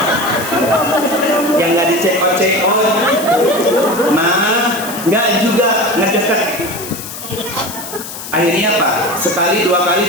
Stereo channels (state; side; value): noise; left; hiss, 10 dB below the sound